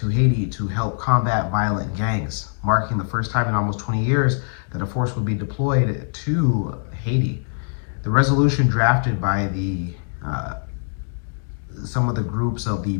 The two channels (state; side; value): silent; right; digital silence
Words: Haiti to help combat violent gangs, marking the first time in almost 20 years that a force would be deployed to Haiti. The resolution drafted by some of the groups of the